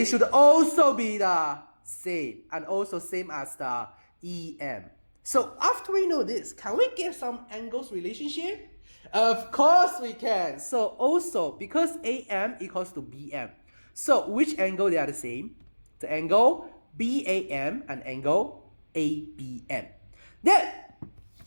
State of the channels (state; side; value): inverted; both; correlation -1.00